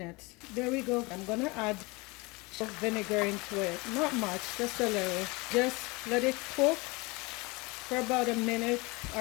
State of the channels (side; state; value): right; quieter; 25.6 dB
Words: There we go. I'm going to add vinegar into it. Not much, just a little. Just let it cook for about a minute